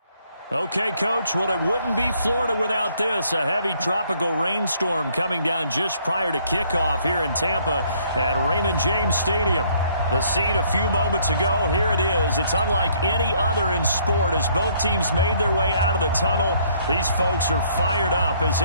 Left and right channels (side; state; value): both; inverted; correlation -0.64